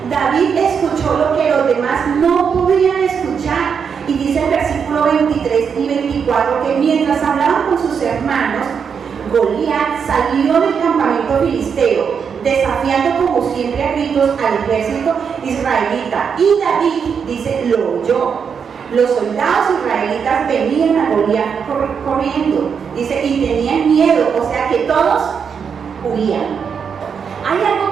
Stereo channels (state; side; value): quieter; left; 6.6 dB